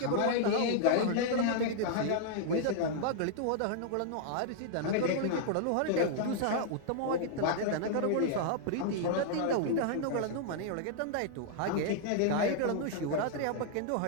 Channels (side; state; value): both; different; correlation -0.01